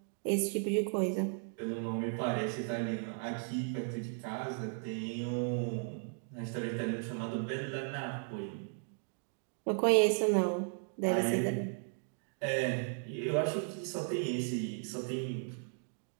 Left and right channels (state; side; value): silent; left; 54 dB below the other